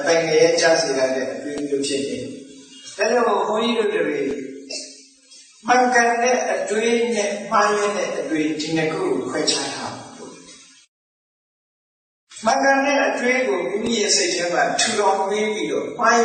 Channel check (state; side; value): identical; both; correlation 1.00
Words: ပိုင်ငယ်ကြားစေတဲ့အတွေးမျိုးဖြစ်နေ။ဒါကြောင့်ဘုန်းကြီးတို့တွေမှန်ကန်တဲ့အတွေးနဲ့မှားရင်းတဲ့အတွေးဒီနှစ်ခုကိုခွဲခြားထားမှန်ကန်တဲ့အတွေးကိုမိမိရဲ့စိတ်ထဲမှာထူထောင်ပေးပြီးတော့မှားရ